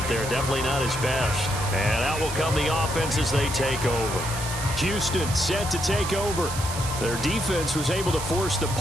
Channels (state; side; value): noise; right; hiss, 7 dB below the sound